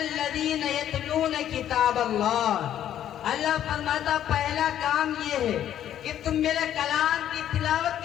یتلون کتاب اللہ۔ اللہ فرماتا پہلا کام یہ ہے کہ تم میرے کلام کی تلاوت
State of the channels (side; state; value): right; quieter; 10.9 dB